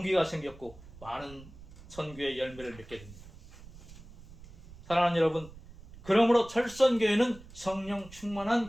생겼고 많은 선교의 열매를 맺게 됩니다. 사랑하는 여러분, 그러므로 철선교회는 성령 충만한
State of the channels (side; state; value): right; noise; rumble, 18 dB below the sound